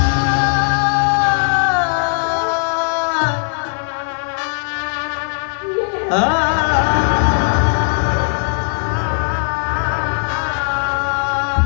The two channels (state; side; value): silent; right; digital silence